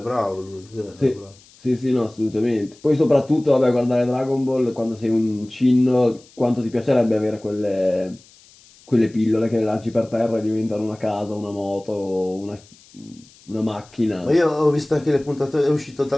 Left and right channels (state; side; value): noise; left; hiss, 26 dB below the sound